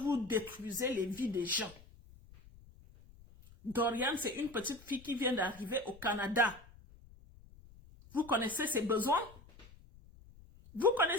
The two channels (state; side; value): noise; left; rumble, 22 dB below the sound